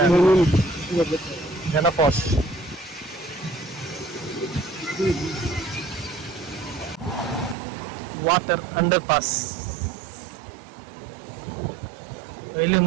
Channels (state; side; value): drops out; left; at 7.6 s